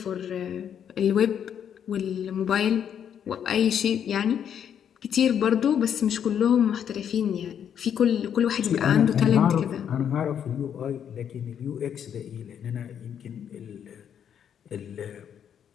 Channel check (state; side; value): quieter; right; 8.7 dB